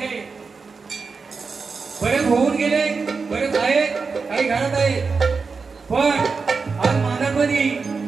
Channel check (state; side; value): quieter; left; 4.8 dB